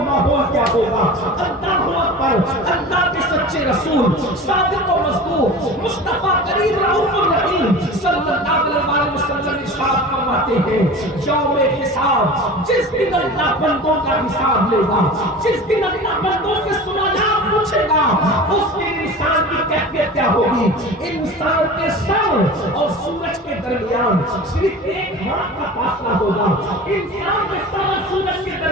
ماحول کیا ہوگا؟ اللہ اکبر۔ اللہ کے سچے رسول صادق و مصدوق مصطفیٰ کریم رؤوف الرحیم صلی اللہ علیہ وسلم ارشاد فرماتے ہیں یوم حساب، جس دن اللہ بندوں کا حساب لے گا، جس دن اللہ بندوں سے سوالات پوچھے گا، اس دن انسان کی کیفیت کیا ہوگی؟ انسان کے سر اور سورج کے درمیان صرف ایک ہاتھ کا فاصلہ ہوگا، انسان کے سر اور سورج کے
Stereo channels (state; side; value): normal; both; correlation 0.36